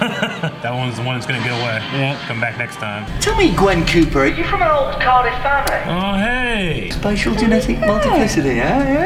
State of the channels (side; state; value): both; identical; correlation 1.00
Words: one's the one that's gonna get away. Yeah. Come back next time. Tell me, Gwen Cooper, are you from an old Cardiff family? Oh, hey. Spatial genetic multiplicity,